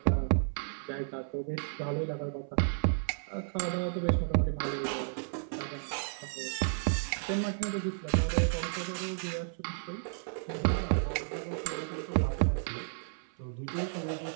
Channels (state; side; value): silent; left; 56 dB below the other